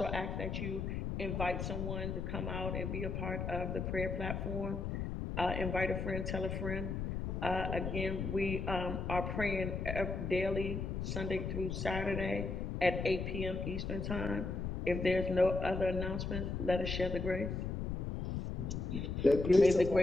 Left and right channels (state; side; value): noise; left; rumble, 3 dB below the sound